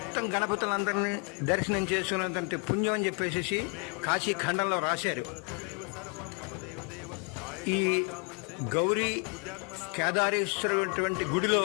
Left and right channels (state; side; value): quieter; right; 35.7 dB